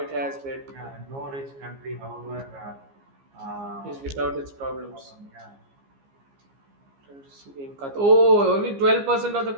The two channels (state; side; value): late; left; 15 ms